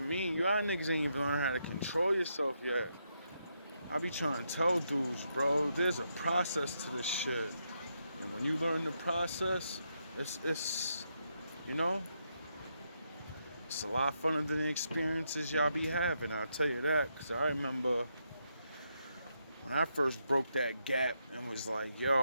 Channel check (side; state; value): both; inverted; correlation -0.80